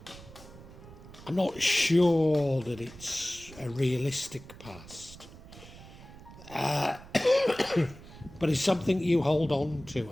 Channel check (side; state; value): right; noise; rumble, 18 dB below the sound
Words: I'm not sure that it's a realistic past, but it's something you hold on to,